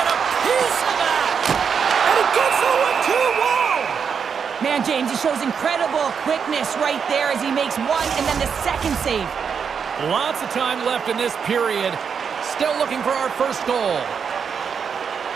a piece of that? And it gets the 1-2. Wow! Man, James, he shows incredible quickness right there as he makes one and then the second save. Lots of time left in this period. Still looking for our first goal.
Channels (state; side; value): quieter; left; 6.6 dB